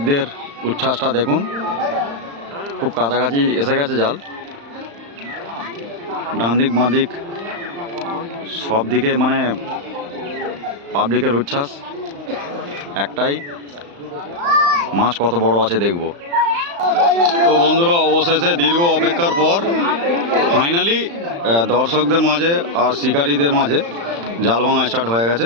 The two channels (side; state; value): left; late; 35 ms